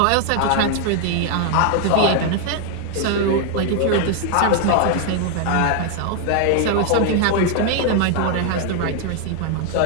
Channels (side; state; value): both; different; correlation 0.00